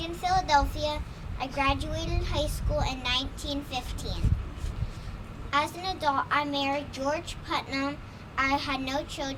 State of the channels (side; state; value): both; identical; correlation 1.00